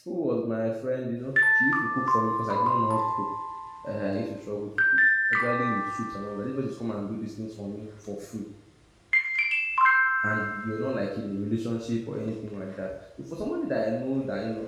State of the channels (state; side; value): identical; both; correlation 1.00